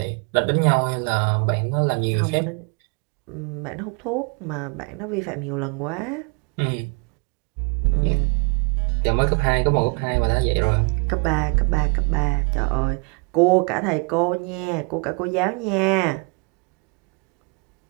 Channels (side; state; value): left; quieter; 34.8 dB